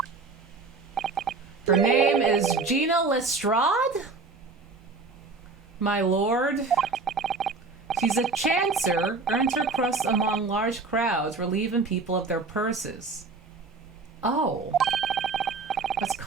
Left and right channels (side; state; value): left; quieter; 4.1 dB